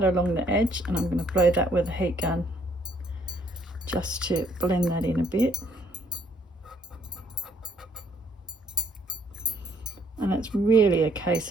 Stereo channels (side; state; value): both; normal; correlation 0.66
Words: along the edge, and I'm going to blow that with a heat gun just to blend that in a bit. And it's really a case